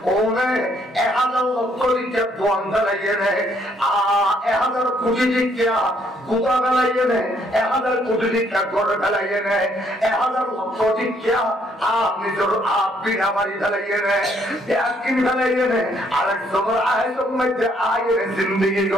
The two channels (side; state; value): both; normal; correlation 0.68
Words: ওনে 1000 লক্ষ লিখে দোয়ান গালাইয়ে নে 1000 কোটি লিখে গুদা গালাইয়ে নে 1000 কোটি লিখে গড় গালাইয়ে নে 1000 লক্ষ লিখে নিজের বিনা বাড়ি গালাইয়ে নে ব্যাকিন গালাইয়ে নে আরেক সময় আয়তম মধ্যে আয়ের জিন্দেগি